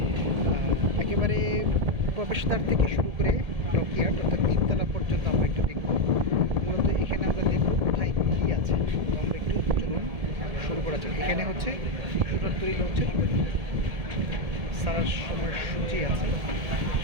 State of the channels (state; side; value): late; left; 1.7 ms